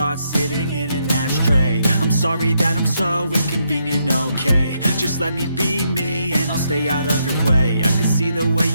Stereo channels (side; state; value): both; inverted; correlation -0.78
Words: sitting in an ashtray. I'm sorry that I'm so inconvenient, okay. Just let me be me and I'll stay out of your way. I can see the way